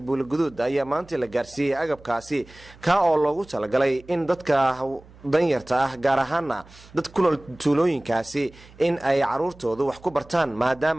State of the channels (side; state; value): right; noise; hum, 23 dB below the sound